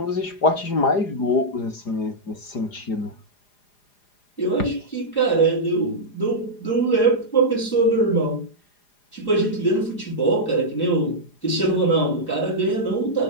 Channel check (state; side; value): late; right; 4.9 ms